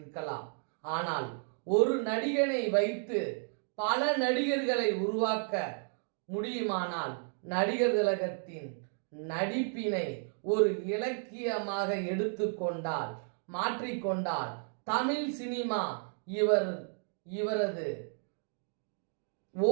ஆனால் ஒரு நடிகனை வைத்து பல நடிகர்களை உருவாக்க முடியுமானால் நடிகர் திலகத்தின் நடிப்பினை ஒரு இலக்கியமாக எடுத்துக்கொண்டால், மாற்றிக்கொண்டால் தமிழ் சினிமா இவரது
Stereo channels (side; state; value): left; silent; 56 dB below the other